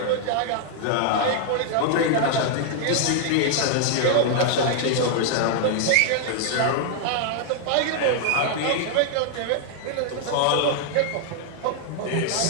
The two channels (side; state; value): both; different; correlation 0.00